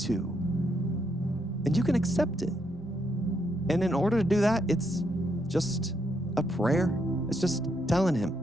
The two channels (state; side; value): normal; both; correlation 0.77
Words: and you can accept it. And in order to do that, it's just a prayer. It's just telling him.